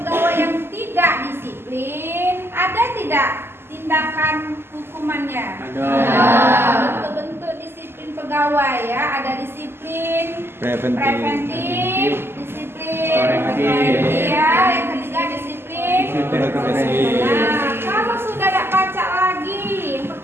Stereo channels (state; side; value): late; left; 0.12 ms